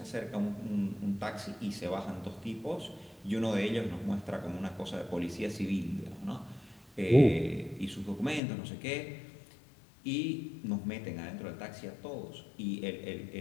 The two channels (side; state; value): right; drops out; at 8.4 s